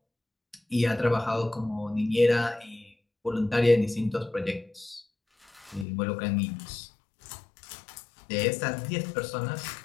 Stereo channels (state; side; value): drops out; right; at 5.9 s